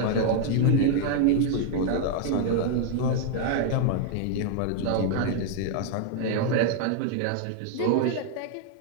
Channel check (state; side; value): different; both; correlation 0.00